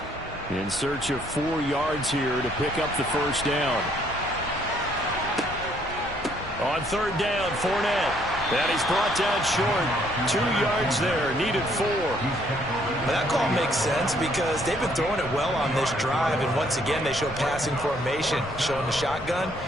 In search of 4 yards here to pick up the first down. On third down, Fournette. And he's brought down short. 2 yards there, needed 4. Well, that call makes sense because they've been throwing it well on this drive, and once again they show passing formation, showing the shotgun.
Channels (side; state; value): left; noise; rumble, 17 dB below the sound